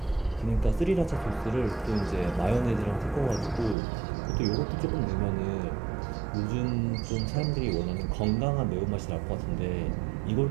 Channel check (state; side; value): drops out; left; at 3.8 s